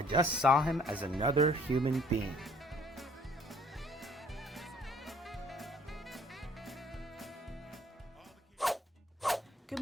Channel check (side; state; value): both; normal; correlation 0.58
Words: just saw him as another human being." Good